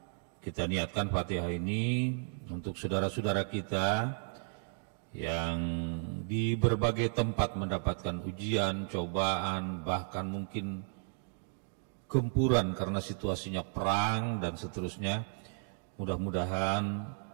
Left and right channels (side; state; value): left; silent; 55 dB below the other